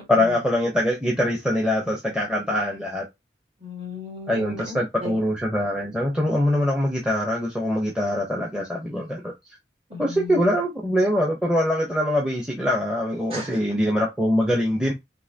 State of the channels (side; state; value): both; normal; correlation 0.76